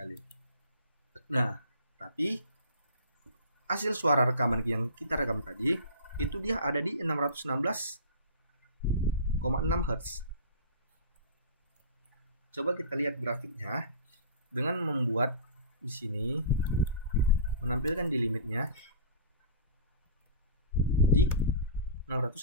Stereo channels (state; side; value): inverted; both; correlation -0.37